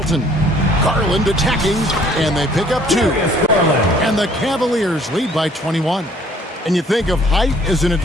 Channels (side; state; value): both; normal; correlation 0.58